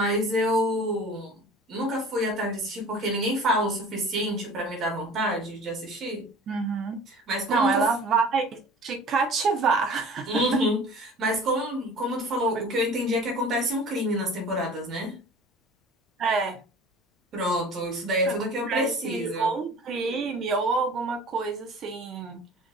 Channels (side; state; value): both; normal; correlation 0.43